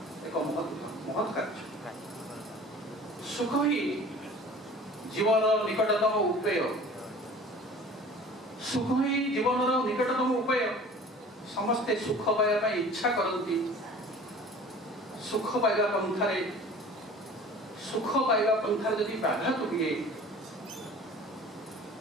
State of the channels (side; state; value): both; normal; correlation 0.44